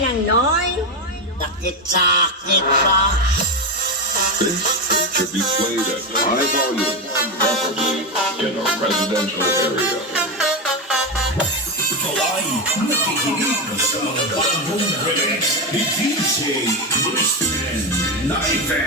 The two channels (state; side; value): normal; both; correlation 0.12